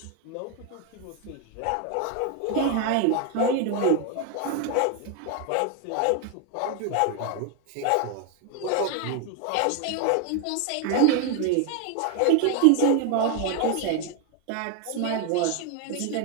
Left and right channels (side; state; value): both; different; correlation 0.01